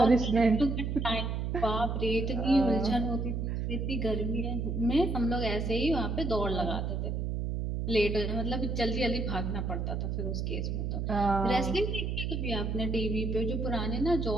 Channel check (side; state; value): right; noise; hum, 1 dB below the sound